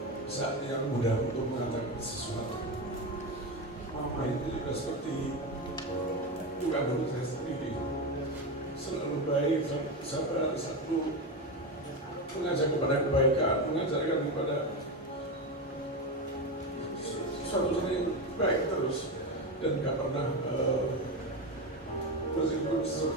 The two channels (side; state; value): both; normal; correlation 0.16